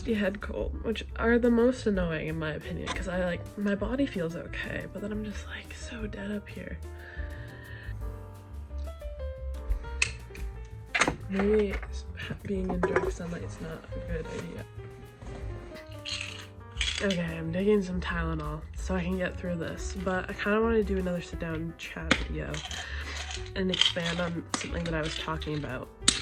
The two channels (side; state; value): both; identical; correlation 1.00